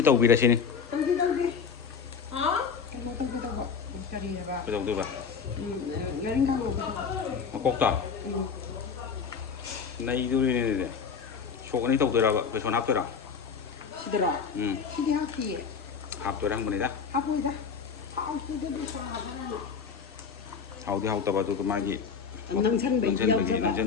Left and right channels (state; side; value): quieter; right; 6.1 dB